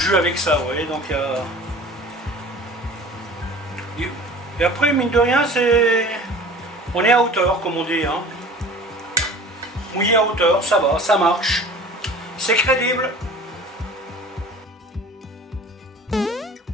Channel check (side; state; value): both; normal; correlation 0.43